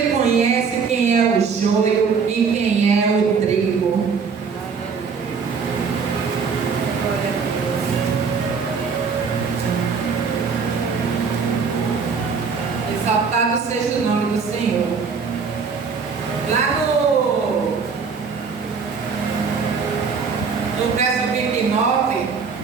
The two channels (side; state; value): left; quieter; 5.5 dB